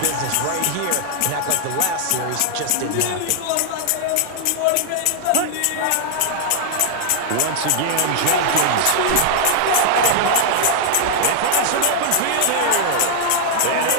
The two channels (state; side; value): different; both; correlation -0.01